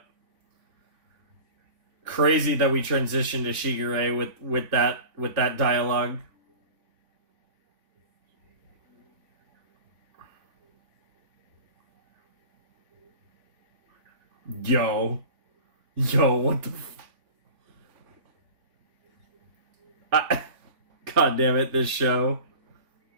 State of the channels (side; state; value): left; late; 3.5 ms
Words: Crazy that we transitioned to Shigure with that dialogue. Yo. Yo, what the God damn it, this show.